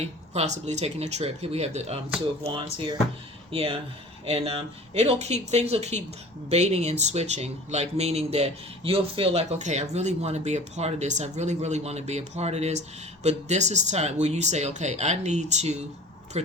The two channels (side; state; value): both; normal; correlation 0.42